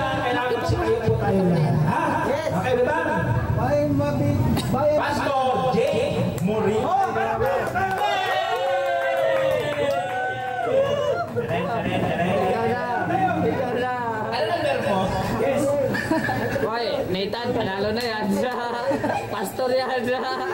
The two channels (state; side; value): identical; both; correlation 1.00